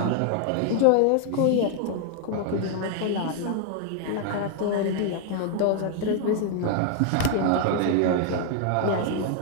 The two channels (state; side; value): different; both; correlation 0.00